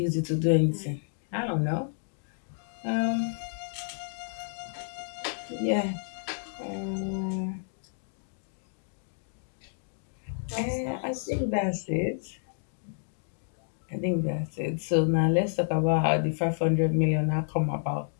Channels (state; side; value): silent; right; digital silence